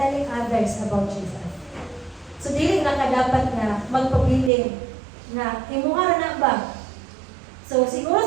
others about Jesus. So, dili na kadapat na magpabiling na imuha na ba? So, siguro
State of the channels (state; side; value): drops out; left; at 4.5 s